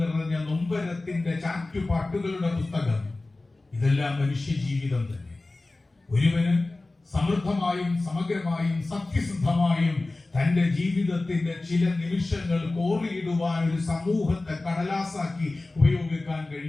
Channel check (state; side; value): quieter; right; 3.1 dB